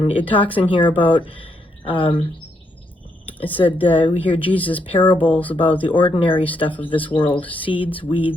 it talks in here about, it said, we hear Jesus' parables about the ordinary stuff of this world, seeds,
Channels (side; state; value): both; normal; correlation 0.77